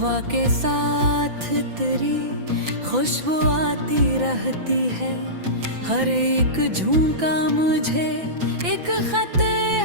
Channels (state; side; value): late; left; 5.9 ms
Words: के साथ तेरी खुशबू आती रहती है, हर एक झोंका मुझे एक खत